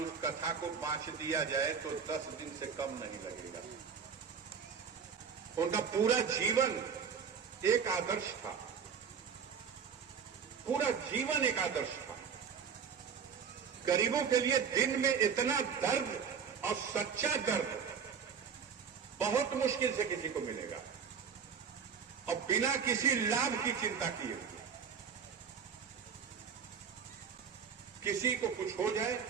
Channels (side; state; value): left; quieter; 6.7 dB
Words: कथा को बांट दिया जाए तो 10 दिन से कम नहीं लगेगा। उनका पूरा जीवन एक आदर्श था, पूरा जीवन एक आदर्श था। गरीबों के लिए दिन में इतना दर्द और सच्चा दर्द बहुत मुश्किल से किसी को मिलेगा, और बिना किसी लाभ की चिंता किए हुए। किसी को कुछ हो जाए,